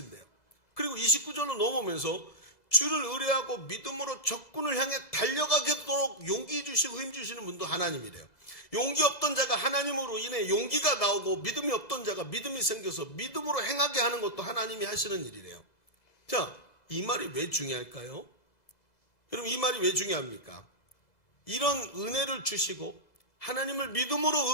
그리고 29절로 넘어오면서 주를 의뢰하고 믿음으로 적군을 향해 달려가도록 용기 주시고 힘 주시는 분도 하나님이래요. 용기 없던 자가 하나님으로 인해 용기가 나오고 믿음이 없던 자가 믿음이 생겨서 믿음으로 행하게 하는 것도 하나님이 하시는 일이래요. 자, 이 말이 왜 중요할까요? 여러분, 이 말이 왜 중요합니까? 이런 은혜를 주시고 하나님을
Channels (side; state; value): right; late; 1.7 ms